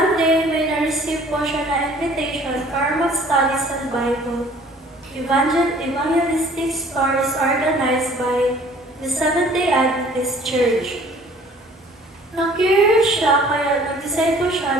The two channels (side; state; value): both; normal; correlation 0.53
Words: day, may na-receive po siya na invitation para mag-study sa Bible. Evangelistic stories organized by the Seventh-day Adventist Church. Na-curious siya kaya nag-decide po